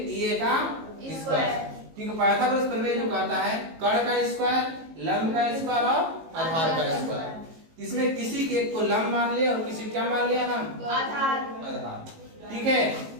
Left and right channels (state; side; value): late; left; 18 ms